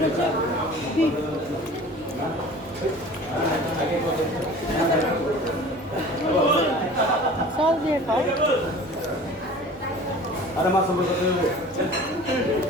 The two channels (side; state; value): both; normal; correlation 0.43